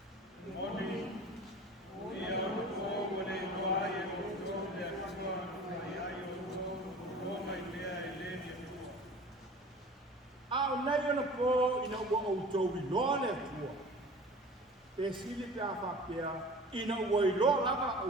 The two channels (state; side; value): normal; both; correlation 0.41